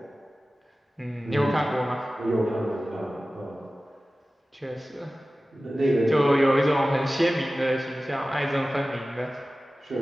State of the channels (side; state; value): both; normal; correlation 0.96